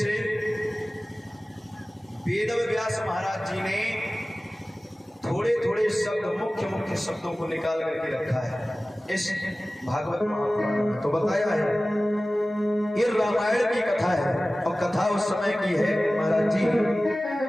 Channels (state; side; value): normal; both; correlation 0.97